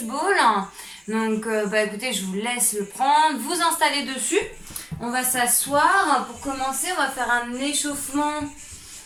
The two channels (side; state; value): both; identical; correlation 1.00